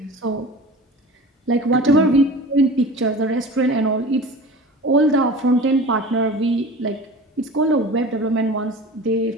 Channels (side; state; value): both; normal; correlation 0.37